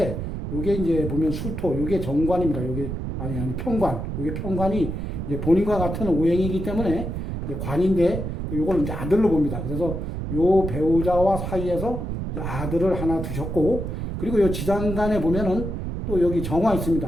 요게 이제 보면 술토, 요게 정관입니다. 요게, 아니, 평관. 요게 평관이 이제 본인과 같은 오행이기 때문에, 이제 관인데, 요걸 이제 아들로 봅니다. 그래서 요 배우자와 사이에서 이제 아들을 하나 두셨고, 그리고 요 지장간에 보면은, 또 여기 정화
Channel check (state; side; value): noise; right; rumble, 4 dB below the sound